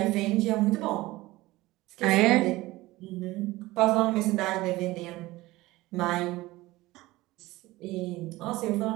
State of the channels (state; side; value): quieter; left; 19.0 dB